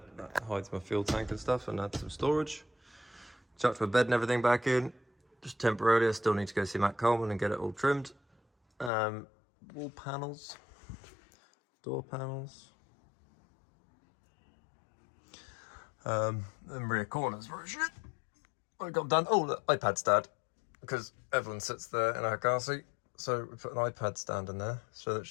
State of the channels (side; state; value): right; drops out; at 8.9 s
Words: that hides my fuel tank and stuff, and adds some storage. Chucked my bed and everything back in, just temporarily. I still need to go see Matt Coleman and get it all trimmed. Wall panels, door panels. And rear corners were shit. I got done. Oh, the iPad stand, because Evelyn sits there in her car seat, so we put an iPad stand in there so that